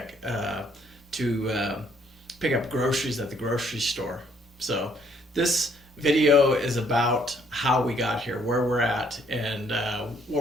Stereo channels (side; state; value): both; normal; correlation 0.66